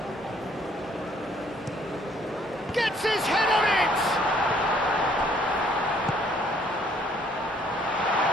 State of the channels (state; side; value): normal; both; correlation 0.63